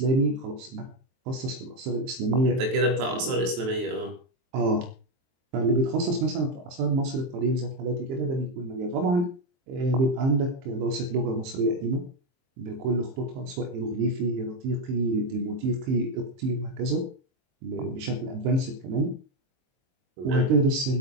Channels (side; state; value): left; late; 23 ms